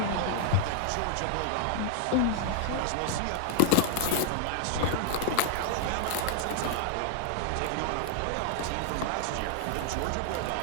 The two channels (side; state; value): both; different; correlation -0.01